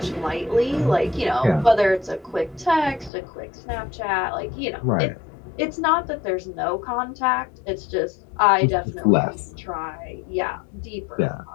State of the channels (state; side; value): drops out; right; at 3.1 s